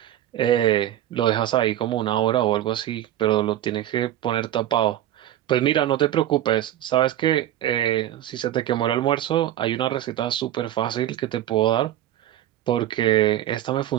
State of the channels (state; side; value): quieter; left; 12.6 dB